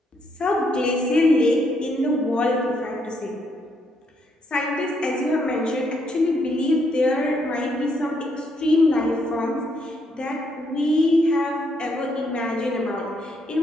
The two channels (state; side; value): normal; both; correlation 0.74